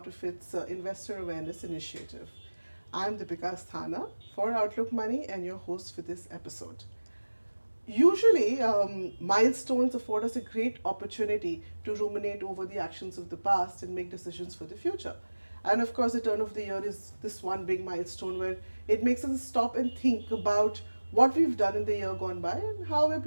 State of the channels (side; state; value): both; inverted; correlation -1.00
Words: of its investor awareness initiative. I'm Deepika Asthana for Outlook Money and your host for this episode. Usually, milestones afford us a great opportunity to ruminate over the actions of the past and make decisions for the future. And of course, the turn of the year is this one big milestone where it makes us stop and think about what we've done in the year gone by and how we're